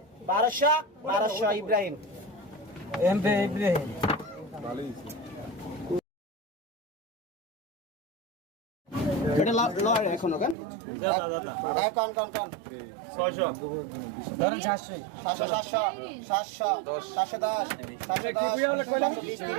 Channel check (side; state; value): left; drops out; at 10.6 s